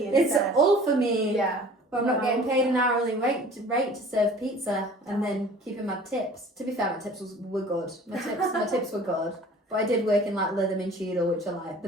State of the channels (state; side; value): normal; both; correlation 0.47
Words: It's instead. all for me. Yeah. But I'm not getting paid an hourly rate to serve pizza and then keeping my tips. To be fair, my tips were good. My tips were good. But I did work in like Lytham Cheadle, which are like